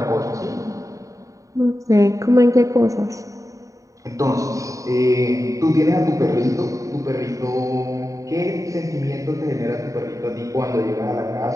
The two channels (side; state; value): left; late; 0.16 ms